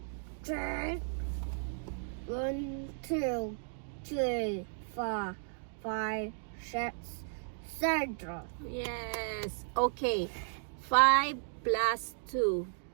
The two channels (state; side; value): silent; left; digital silence